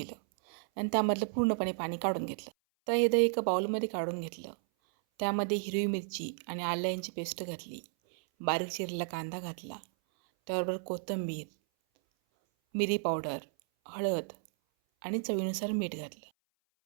आणि त्यामधलं पूर्णपणे पाणी काढून घेतलं. तर हे दही एका बाउलमध्ये काढून घेतलं. त्यामध्ये हिरवी मिरची आणि आलं यांची पेस्ट घातली. बारीक चिरलेला कांदा घातला. त्याबरोबर कोथिंबीर, मिरी पावडर, हळद आणि चवीनुसार मीठ घातलं.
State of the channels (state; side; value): silent; left; 55 dB below the other